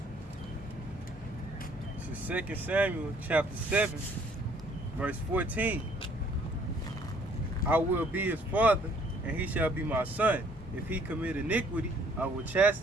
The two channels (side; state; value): both; normal; correlation 0.61